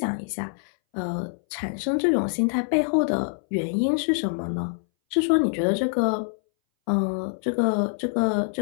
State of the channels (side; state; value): right; silent; 61 dB below the other